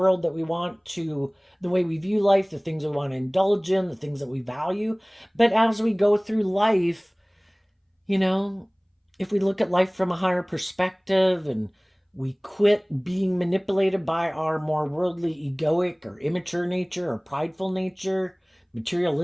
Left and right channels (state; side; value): identical; both; correlation 1.00